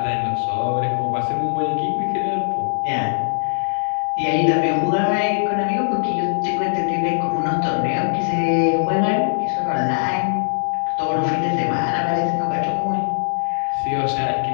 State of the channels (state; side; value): silent; right; digital silence